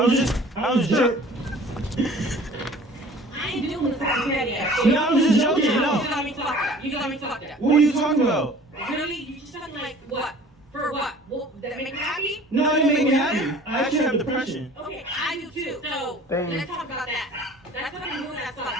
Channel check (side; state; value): both; normal; correlation 0.48